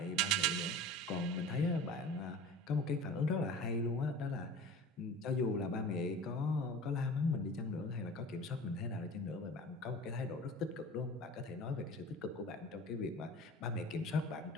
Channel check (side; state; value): both; normal; correlation 0.39